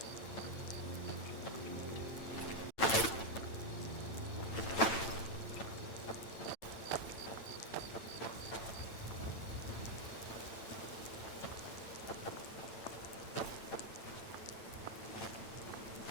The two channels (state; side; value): late; right; 8.9 ms